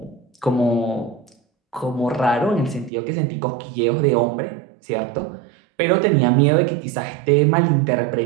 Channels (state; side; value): drops out; left; at 2.9 s